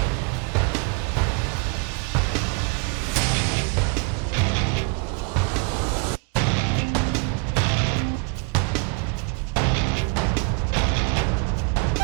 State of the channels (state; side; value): quieter; left; 31.0 dB